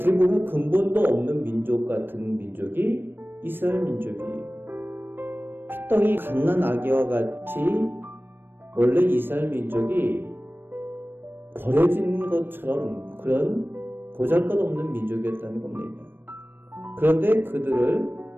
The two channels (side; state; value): left; late; 0.098 ms